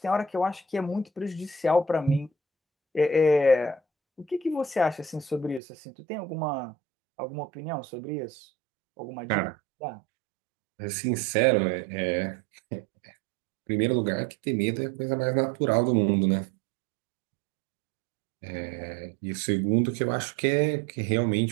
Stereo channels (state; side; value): drops out; left; at 5.6 s